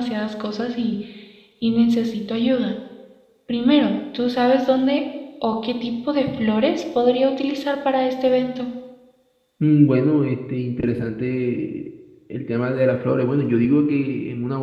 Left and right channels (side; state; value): both; identical; correlation 1.00